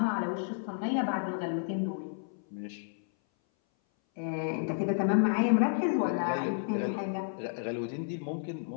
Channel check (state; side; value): silent; right; 57 dB below the other